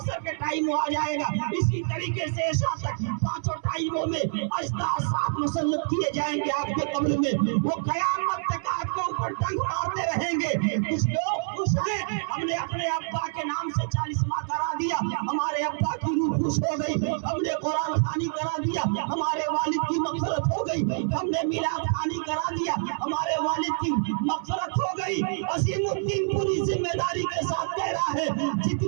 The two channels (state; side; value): silent; left; 60 dB below the other